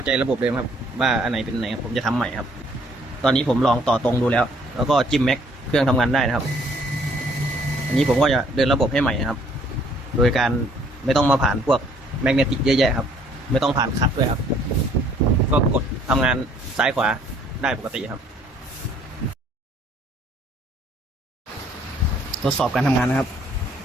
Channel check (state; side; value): normal; both; correlation 0.62